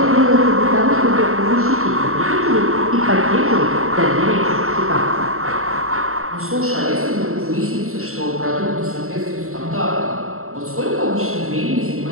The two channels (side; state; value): left; late; 0.63 ms